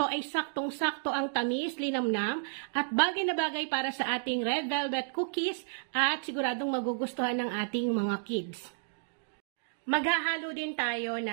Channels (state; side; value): silent; left; digital silence